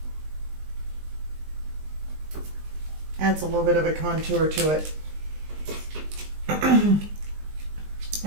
Adds a little bit of a contour to it.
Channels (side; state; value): left; late; 20 ms